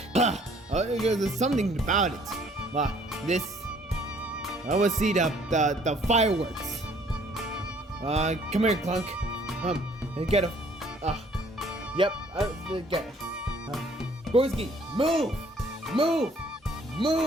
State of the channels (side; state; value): both; normal; correlation 0.60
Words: There's something about it. This. I want to see the fireworks. Come here, Clunk. And get a. Yep. Get it. Gorski, move, move,